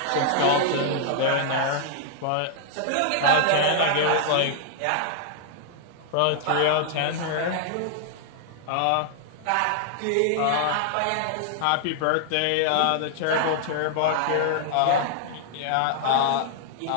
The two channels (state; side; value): different; both; correlation -0.01